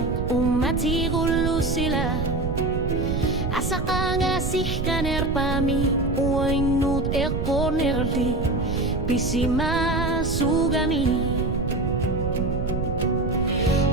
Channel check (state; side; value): noise; right; rumble, 2 dB below the sound